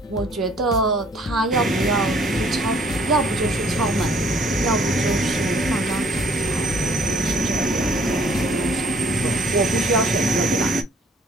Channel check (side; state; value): both; normal; correlation 0.59